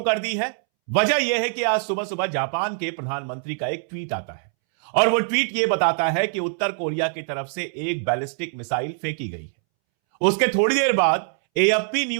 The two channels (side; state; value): left; silent; 63 dB below the other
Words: कर दी है। वजह यह है कि आज सुबह सुबह जापान के प्रधानमंत्री का एक ट्वीट आता है और वो ट्वीट ये बताता है कि उत्तर कोरिया की तरफ से एक बैलिस्टिक मिसाइल फेंकी गई है। उसके थोड़ी देर बाद एएफपी